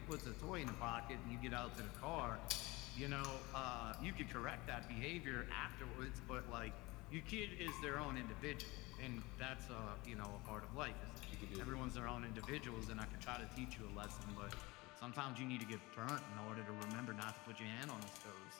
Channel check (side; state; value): right; quieter; 22.7 dB